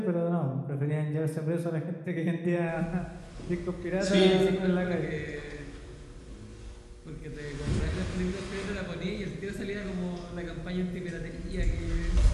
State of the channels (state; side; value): identical; both; correlation 1.00